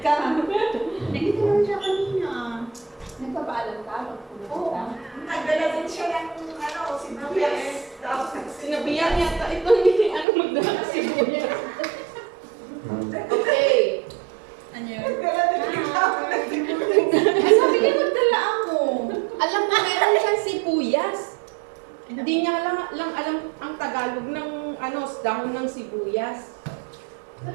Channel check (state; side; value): drops out; left; at 10.2 s